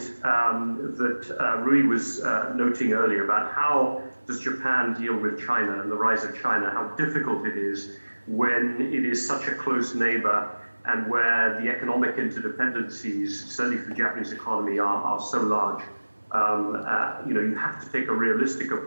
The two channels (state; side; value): inverted; both; correlation -1.00